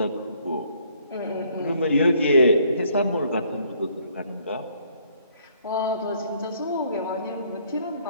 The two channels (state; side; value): inverted; both; correlation -0.64